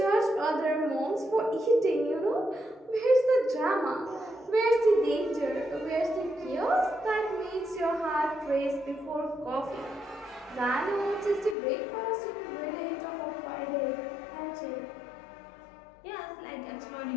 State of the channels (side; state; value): right; drops out; at 11.6 s